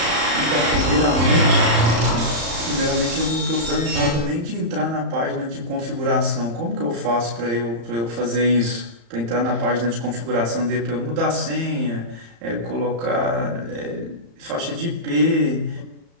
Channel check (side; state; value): left; late; 34 ms